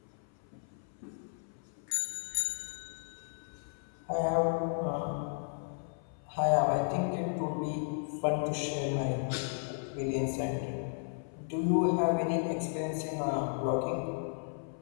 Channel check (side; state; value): right; silent; 55 dB below the other